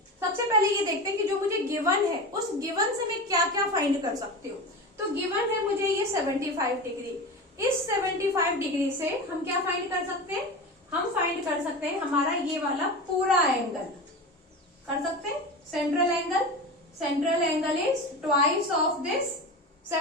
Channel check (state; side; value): normal; both; correlation 0.26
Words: सबसे पहले ये देखते हैं कि जो मुझे गिवन है उस गिवन से मैं क्या क्या फाइंड कर सकती हूँ। तो गिवन है मुझे ये 75 डिग्री, इस 75 डिग्री से हम क्या फाइंड कर सकते हैं, हम फाइंड कर सकते हैं हमारा ये वाला पूरा एंगल कर सकते हैं, central angle is twice of this